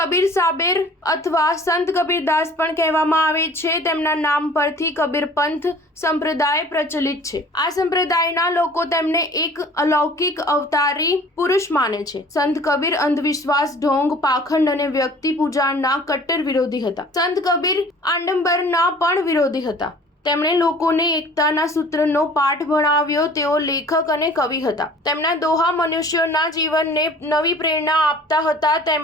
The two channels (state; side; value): normal; both; correlation 0.48